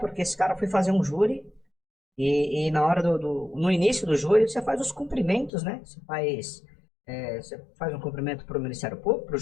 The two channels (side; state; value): right; drops out; at 5.5 s